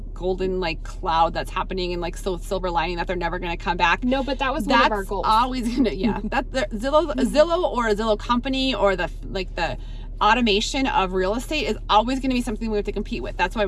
golden like cloud that's happening and like so silver lining that they're never going to come back. No, but that was one of our goals. Always gonna, yeah. That the Zillow or a Zillow company or the automation of real estate is always going to be something we have to compete with. That's why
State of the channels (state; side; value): identical; both; correlation 1.00